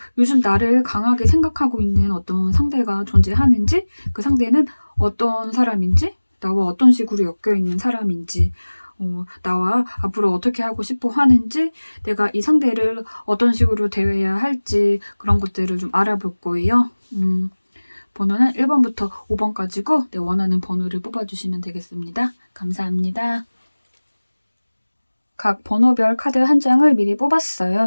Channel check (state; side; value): inverted; both; correlation -1.00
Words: 요즘 나를 강하게 생각하고 있는 어떤 상대가 존재하는지, 그 상대는 어떤 사람인지, 나와 어떤 식으로 엮여 있는 사람인지, 나와 앞으로 어떻게 하고 싶어 하는지, 내가 이 상대를 어떤 식으로 대해야 할지 그런 것들을 좀 알아볼 거예요. 번호는 1번부터 5번까지고 내 원하는 번호를 뽑아주시면 되겠습니다. 감사합니다. 각 번호별 카드 한 장을 미리